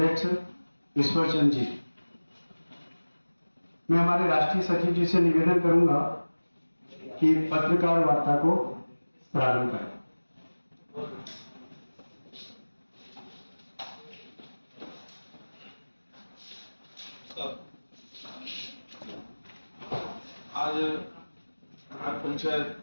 ईश्वर चंद जी, मैं हमारे राष्ट्रीय सचिव जी से निवेदन करूंगा कि पत्रकार वार्ता को प्रारंभ करें। आज ग्राम पंचायत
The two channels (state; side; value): inverted; both; correlation -1.00